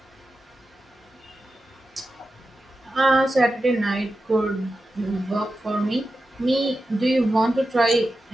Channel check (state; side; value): normal; both; correlation 0.91